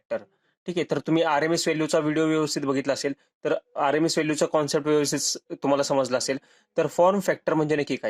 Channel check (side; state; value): both; identical; correlation 1.00